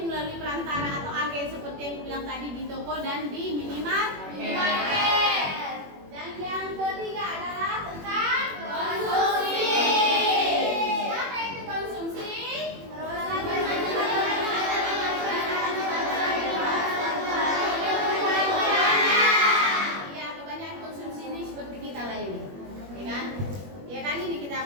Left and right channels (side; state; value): left; late; 21 ms